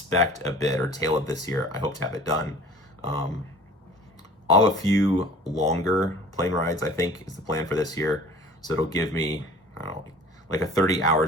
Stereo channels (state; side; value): normal; both; correlation 0.45